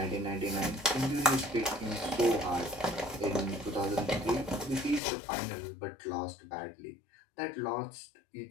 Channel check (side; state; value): right; drops out; at 5.0 s